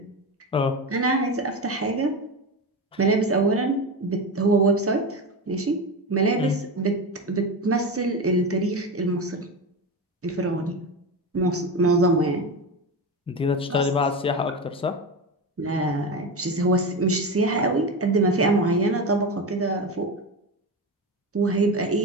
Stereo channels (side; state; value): both; normal; correlation 0.20